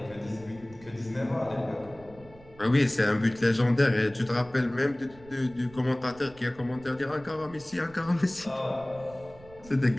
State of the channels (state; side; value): noise; right; rumble, 22 dB below the sound